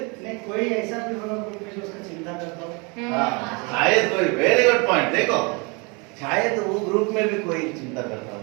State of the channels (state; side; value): quieter; left; 30.5 dB